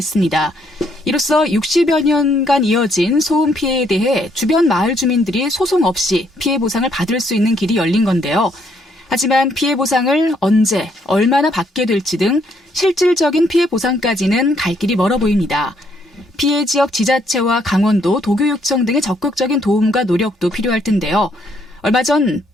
이로써 60여 년간 이어진 소음 피해에 대해 주변 마을 주민들이 소송 없이 피해 보상을 받을 수 있는 길이 열린 건데요. 하지만 피해 보상을 언제, 얼마나 받게 될지 등 실질적인 피해 보상까지는 갈 길이 멀어 보입니다. 피해 지역 지자체와 강원도, 도교육청 등의 적극적인 도움과 노력도 필요할 텐데요. 얼마 전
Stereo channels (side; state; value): both; normal; correlation 0.70